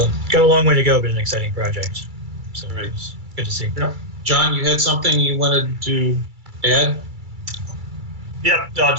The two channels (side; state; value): left; late; 2.3 ms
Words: got a long way to go, but an exciting project. So It was good to see. Yeah. John, you had something you wanted to add? Yep,